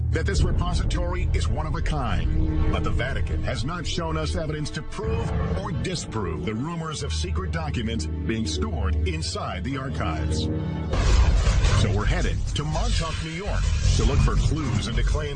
that this repository is one of a kind. But the Vatican has not shown us evidence to prove or disprove the rumors of secret documents being stored inside the archives. So we're headed to Montauk, New York, to look for clues into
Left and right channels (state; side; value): identical; both; correlation 1.00